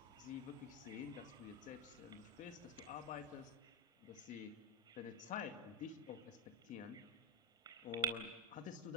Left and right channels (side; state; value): both; normal; correlation -0.03